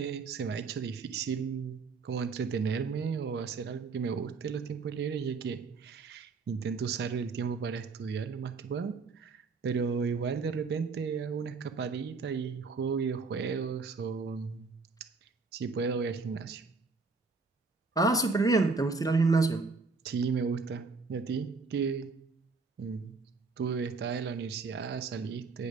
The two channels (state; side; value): quieter; left; 4.3 dB